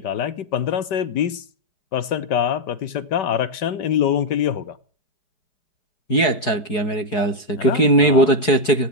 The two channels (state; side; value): late; right; 4.7 ms